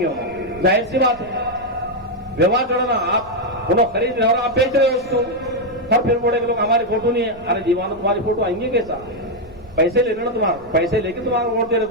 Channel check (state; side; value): noise; right; rumble, 22 dB below the sound